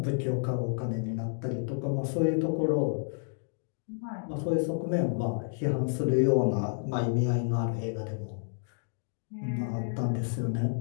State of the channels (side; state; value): right; silent; digital silence